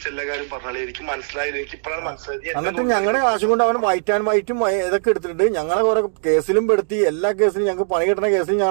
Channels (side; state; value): left; silent; digital silence